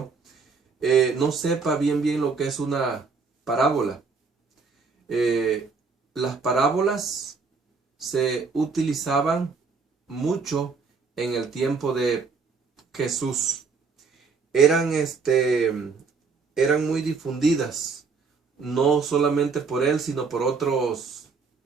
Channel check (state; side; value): quieter; left; 4.8 dB